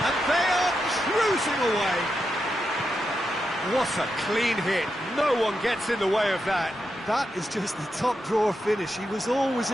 And they are cruising away. What a clean hit. No one gets in the way of that. That is just the top drawer finish. He was always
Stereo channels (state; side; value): normal; both; correlation 0.86